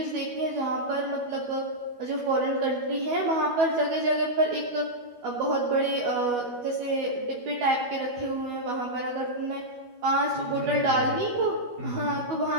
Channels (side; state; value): left; late; 12 ms